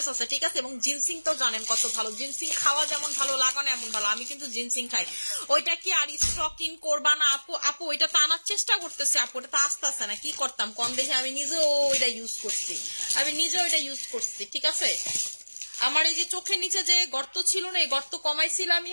আছে, ঠিক আছে। এবং জিনসিং তো জানেন কত ভালো, জিনসিং খাওয়া যেমন ভালো, লাগানো এমন ভালো। আমি কিন্তু জিনসিং খাই। ওইটা কি আর স্টক ইন করবা না আপু? আপু ওইটা তো আনার চেষ্টা করতেছে আপু, ওটা তো আসতে আসে না, কি করতাম কম দেখে, আমি নিজেও ওইটা ইউজ করছি, আমি নিজেও ওইটা ইউজ করছি, ঠিক আছে। আমার এই যে চোখের নিচে যে গর্ত ছিল না, এই গর্ত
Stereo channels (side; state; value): both; inverted; correlation -1.00